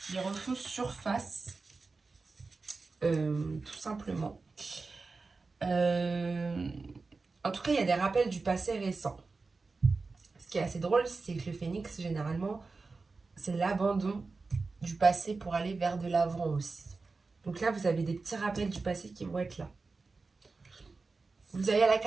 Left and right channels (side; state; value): left; quieter; 4.0 dB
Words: refont surface, tout simplement. En tout cas, il y a des rappels du passé récent. Ce qui est assez drôle, c'est que le phénix, généralement, c'est l'abandon du passé pour aller vers de l'avant aussi. Donc là, vous avez des petits rappels du passé qui vont être là. Vous avez la